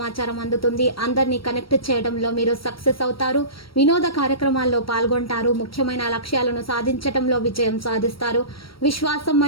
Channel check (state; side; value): late; right; 0.75 ms